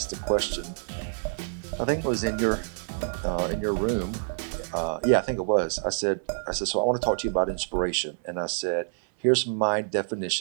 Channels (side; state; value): left; silent; 60 dB below the other